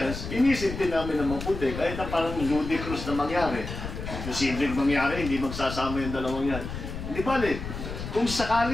inisip din namin na maputi, kahit na parang ludicrous na mangyari. Posibleng mangyari, hindi magsasama yung dalawang yan. Hindi bali, kung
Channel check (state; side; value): noise; left; rumble, 7 dB below the sound